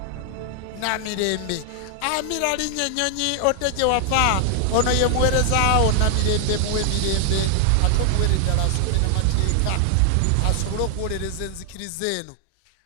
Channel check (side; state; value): both; different; correlation 0.00